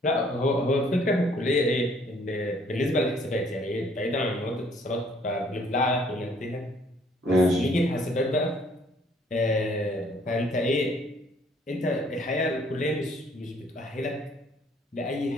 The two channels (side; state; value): both; normal; correlation 0.62